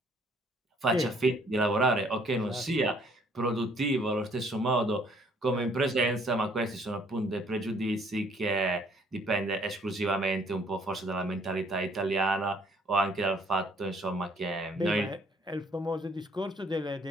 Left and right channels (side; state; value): both; normal; correlation 0.62